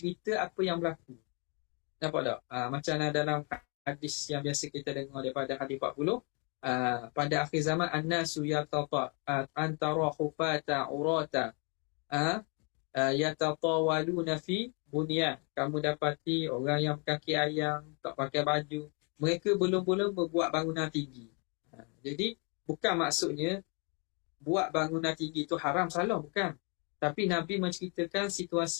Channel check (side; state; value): right; quieter; 35.1 dB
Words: apa yang berlaku. Nampak tak? Macam dalam hadis yang biasa kita dengar daripada hadis 40. Pada akhir zaman an-nasu yatata antara hufata urata yatatawaluna fi bunyan. Kamu dapati orang yang kaki ayam, tak pakai baju, mereka belum-belum berbuat bangunan tinggi. Jadi bukan maksudnya buat bangunan tinggi itu haram, salah, bukan. Tapi Nabi menceritakan